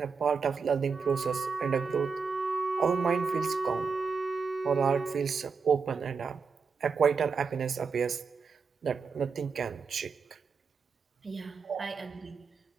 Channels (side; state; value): left; quieter; 5.3 dB